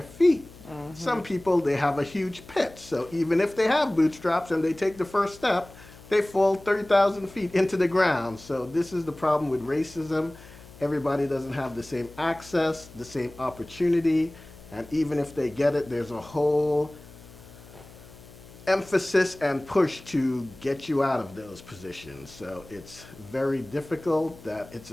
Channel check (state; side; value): noise; left; hum, 20 dB below the sound